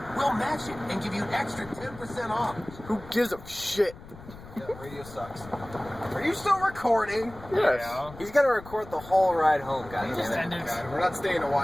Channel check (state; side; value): noise; left; rumble, 17 dB below the sound